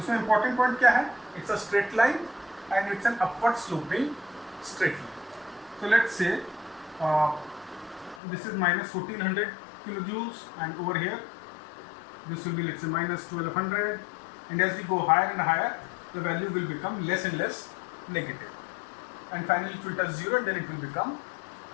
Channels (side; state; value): right; drops out; at 8.2 s